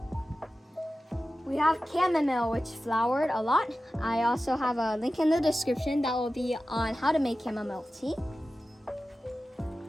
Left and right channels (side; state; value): both; normal; correlation 0.94